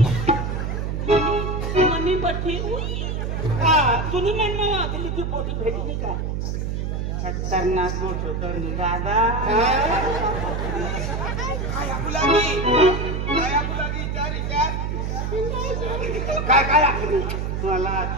मनी पट्टी तुम्ही म्हणणं दिल्लीची पोटी भेटली का खतरनाक मोठ होतं दादा काय काय आखली मला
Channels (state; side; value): noise; right; hum, 2 dB below the sound